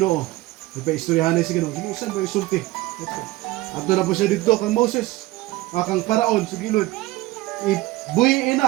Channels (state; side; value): quieter; left; 18.8 dB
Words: Ipaistoryahan sa Ginoo. Ginoo, saan ba isulti? Ato na po siya dito kang Moses, akang paraon sa gilid. Ibuhiin